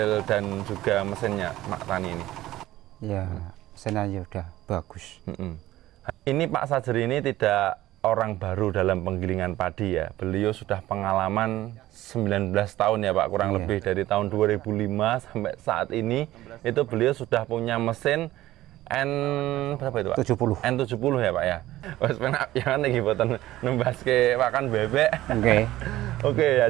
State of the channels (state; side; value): quieter; left; 15.6 dB